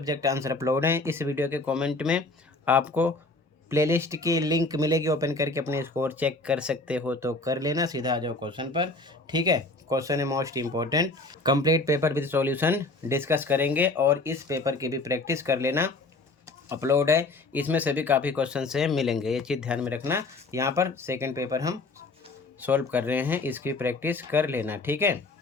आंसर अपलोड हैं। इस वीडियो के कमेंट में आपको प्लेलिस्ट की लिंक मिलेगी, ओपन करके अपने स्कोर चेक कर सकते हो तो कर लेना। सीधा आ जाओ क्वेश्चन पर, ठीक है। क्वेश्चन है most important, complete paper with solution discuss करेंगे और इस पेपर की भी प्रैक्टिस कर लेना। अपलोड है, इसमें से भी काफ़ी क्वेश्चन से मिलेंगे, ये चीज़ ध्यान में रखना। यहाँ पर सेकेंड पेपर हम सॉल्व कर रहे हैं, इसकी प्रैक्टिस कर लेना, ठीक है।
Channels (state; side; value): quieter; right; 3.2 dB